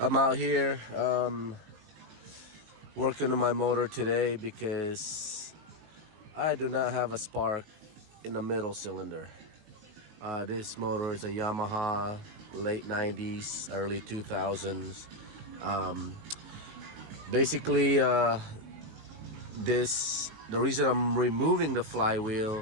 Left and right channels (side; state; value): left; late; 19 ms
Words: I'm out here working on my motor today because I do not have a spark in the middle cylinder. This motor is a Yamaha, late 90s, early 2000s. Um, basically, the reason I'm removing the